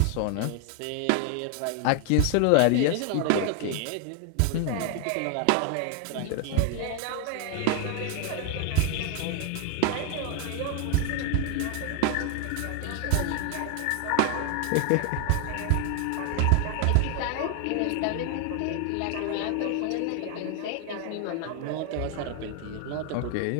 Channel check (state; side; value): different; both; correlation 0.00